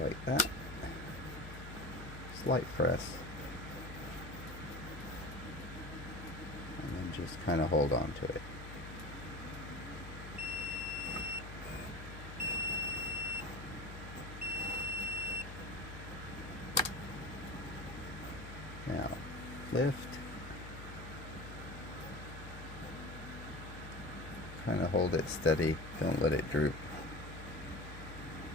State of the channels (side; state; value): left; noise; hum, 10 dB below the sound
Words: like that. Slight press. And then just kind of hold on to it. Now, lift. Kind of hold it steady, don't let it droop.